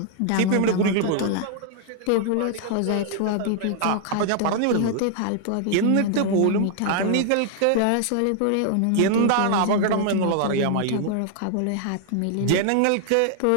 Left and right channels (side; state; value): both; different; correlation 0.00